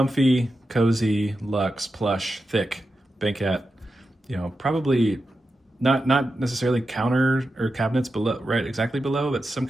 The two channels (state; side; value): normal; both; correlation 0.90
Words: cozy, luxe, plush, thick banquette. You know, probably not necessarily counter or cabinets below, right exactly below, but some